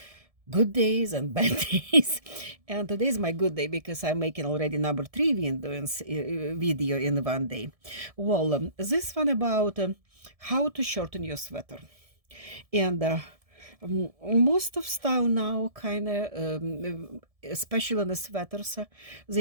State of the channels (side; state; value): left; late; 1.7 ms